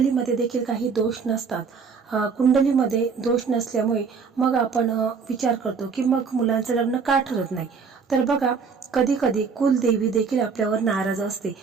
देखील काही दोष नसतात। कुंडलीमध्ये दोष नसल्यामुळे मग आपण विचार करतो की मग मुलांचं लग्न का ठरत नाही। तर बघा कधी कधी कुलदेवी देखील आपल्यावर नाराज असते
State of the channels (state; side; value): quieter; left; 5.5 dB